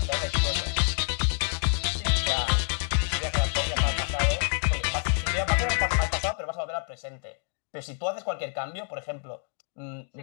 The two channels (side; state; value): right; silent; digital silence